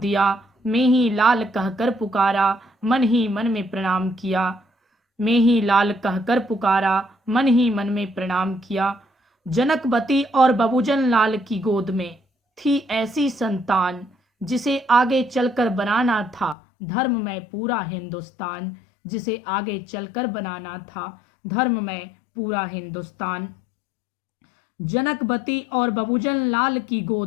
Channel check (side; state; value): right; drops out; at 16.6 s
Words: मैं ही लाल कहकर पुकारा, मन ही मन में प्रणाम किया, मैं ही लाल कहकर पुकारा, मन ही मन में प्रणाम किया। जनकवती और बबूजन लाल की गोद में थी ऐसी संतान, जिसे आगे चलकर बनाना था धर्म में पूरा हिंदुस्तान, जिसे आगे चलकर बनाना था धर्म में पूरा हिंदुस्तान। जनकवती और बबूजन लाल की